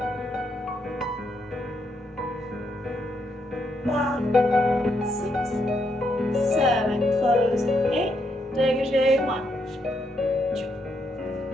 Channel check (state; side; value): normal; both; correlation 0.78